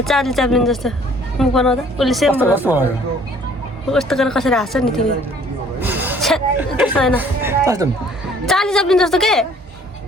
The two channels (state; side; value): normal; both; correlation 0.57